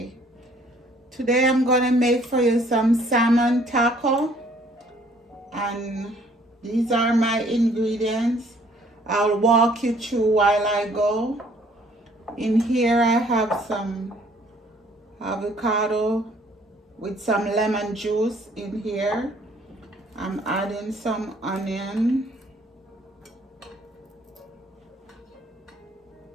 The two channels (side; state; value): both; normal; correlation 0.60